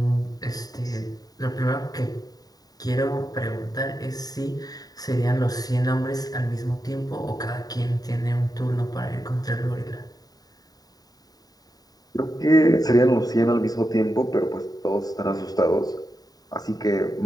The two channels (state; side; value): late; right; 0.18 ms